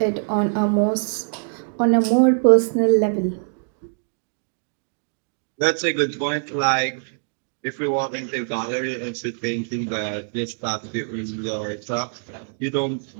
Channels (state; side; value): silent; left; digital silence